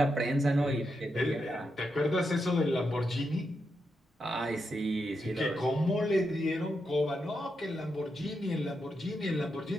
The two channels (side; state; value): both; normal; correlation 0.84